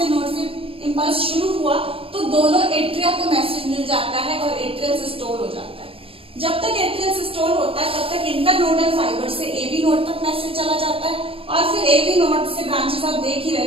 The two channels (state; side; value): late; left; 0.27 ms